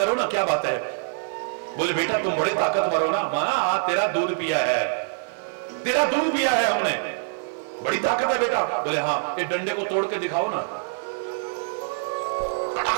ना, क्या बात है? बोले बेटा तुम बड़े ताकतवर हो ना। मां तेरा दूध पिया है, तेरा दूध पिया है हमने, बड़ी ताकत है बेटा। बोले हाँ, ये डंडे को तोड़ के दिखाओ ना।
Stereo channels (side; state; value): left; silent; digital silence